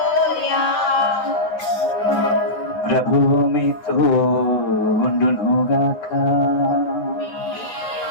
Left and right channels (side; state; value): right; late; 9.1 ms